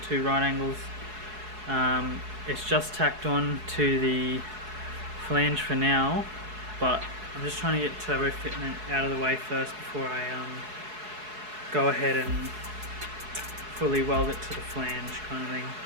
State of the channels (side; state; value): left; late; 4.7 ms